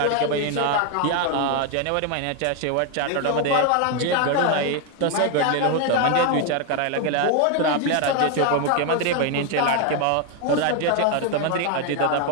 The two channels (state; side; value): different; both; correlation 0.01